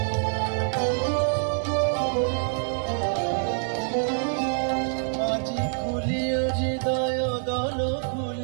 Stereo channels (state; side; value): silent; left; digital silence